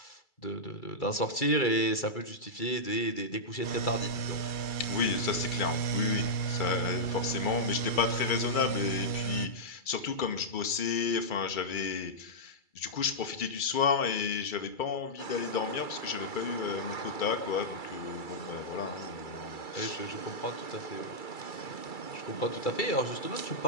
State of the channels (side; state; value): right; late; 2.3 ms